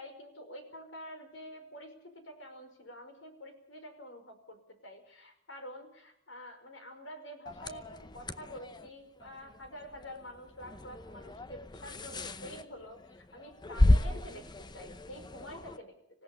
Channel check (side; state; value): both; normal; correlation 0.87